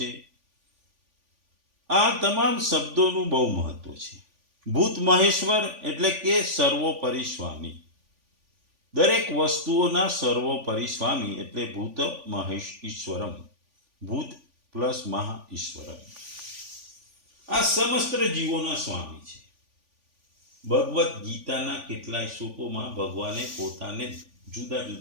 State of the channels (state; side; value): late; left; 3.5 ms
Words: આ તમામ શબ્દોનું બહુ મહત્વ છે. ભૂત મહેશ્વર એટલે કે સર્વોપરી સ્વામી, દરેક વસ્તુઓના સર્વોપરી સ્વામી એટલે ભૂત મહેશ ઈશ્વરમ, ભૂત પ્લસ મહા ઈશ્વરમ. આ સમસ્ત જીવોના સ્વામી છે. ભગવદ્ ગીતાના કેટલાય શ્લોકોમાં ભગવાને પોતાને જુદા